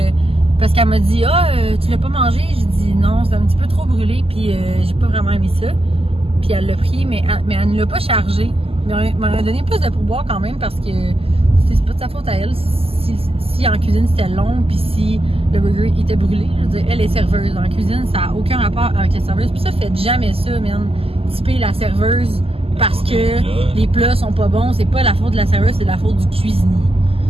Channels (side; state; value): left; late; 0.28 ms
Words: parce qu'elle m'a dit tu l'as pas mangé, j'ai dit non, c'est un petit peu trop brûlé, puis j'ai pas vraiment aimé ça, puis elle l'a pris, mais elle ne l'a pas chargé, mais elle m'a donné plus de pourboire quand même parce que c'est pas de sa faute à elle si en cuisine c'était long, puis si le burger était brûlé. Je veux dire, elle est serveuse en cuisine, ça a aucun rapport avec la serveuse, puis ça, faites jamais ça, man, typer la serveuse parce que les plats sont pas bons. C'est pas la faute de la serveuse, c'est la faute du cuisinier.